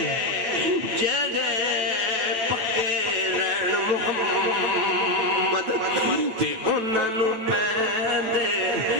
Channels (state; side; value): late; left; 8.9 ms